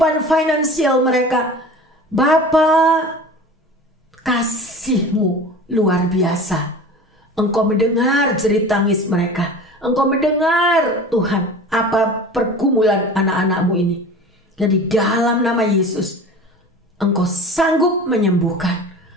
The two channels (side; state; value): both; normal; correlation 0.38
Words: finansial mereka. Bapa, kasih-Mu luar biasa. Engkau mendengar jerit tangis mereka. Engkau mendengar Tuhan apa pergumulan anak-anak-Mu ini. Dan di dalam nama Yesus, Engkau sanggup menyembuhkan,